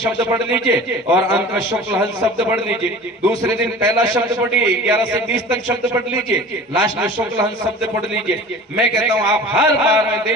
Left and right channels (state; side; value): normal; both; correlation 0.40